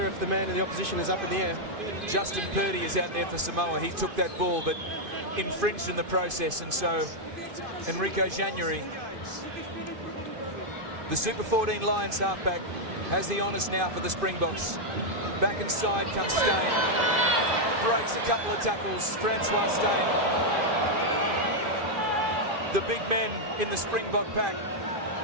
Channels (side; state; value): left; late; 2.5 ms